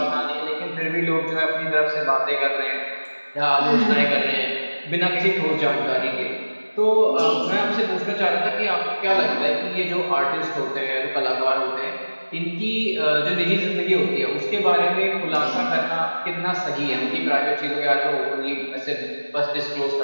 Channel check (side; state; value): both; inverted; correlation -1.00